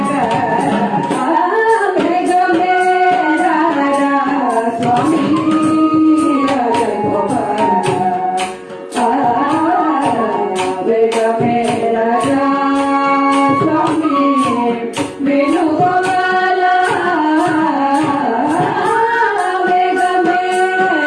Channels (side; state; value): both; identical; correlation 1.00